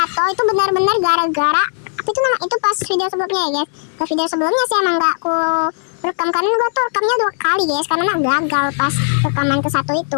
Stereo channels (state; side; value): silent; right; 68 dB below the other